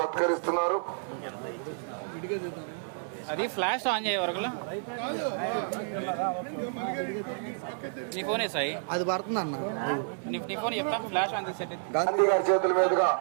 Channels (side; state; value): left; silent; 58 dB below the other